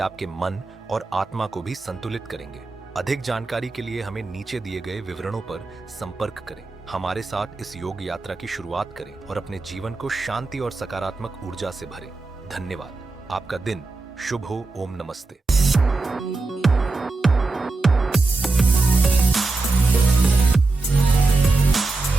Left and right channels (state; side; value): quieter; left; 3.5 dB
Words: मन और आत्मा को भी संतुलित करेंगे। अधिक जानकारी के लिए हमें नीचे दिए गए विवरणों पर संपर्क करें। हमारे साथ इस योग यात्रा की शुरुआत करें और अपने जीवन को शांति और सकारात्मक ऊर्जा से भरें। धन्यवाद। आपका दिन शुभ हो। ओम नमस्ते।